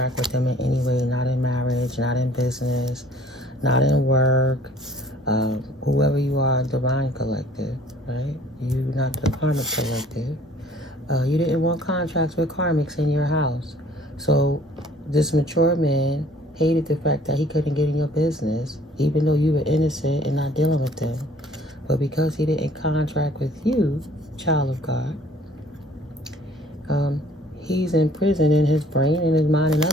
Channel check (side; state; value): both; normal; correlation 0.55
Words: with him in any way, not in marriage, not in business, not in work. Whoever you are, divine collective, right? You not the karmic collective. You didn't want contracts with karmics in your house. So this mature man hated the fact that he couldn't get in your business, even though you were innocent and not dealing with them. But because he didn't contract with you, child of God, he's in prison in his brain and his mind and